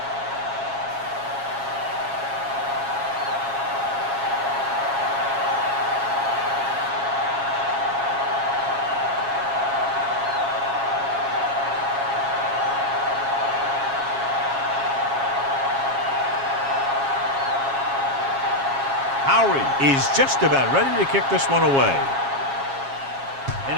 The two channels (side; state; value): left; late; 7.3 ms